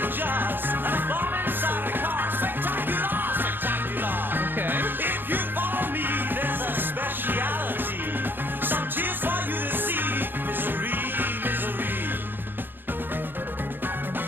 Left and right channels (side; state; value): left; late; 0.097 ms